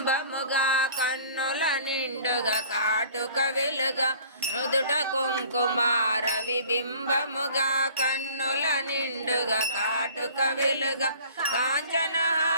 కన్నుల నిండుగా కాటుక వెలుగా నుదుట కుంకుమార విబింబముగా కన్నుల నిండుగా కాటుక వెలుగా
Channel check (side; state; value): both; inverted; correlation -0.49